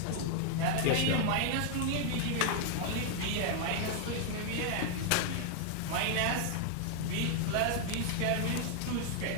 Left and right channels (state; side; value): different; both; correlation 0.00